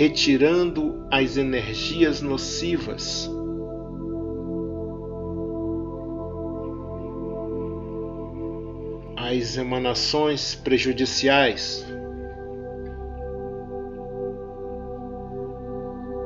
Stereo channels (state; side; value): identical; both; correlation 1.00